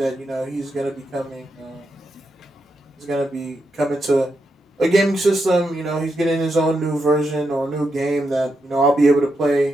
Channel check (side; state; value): both; normal; correlation 0.84